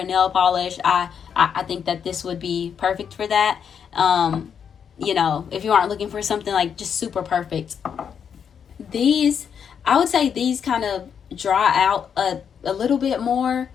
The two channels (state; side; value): quieter; right; 7.5 dB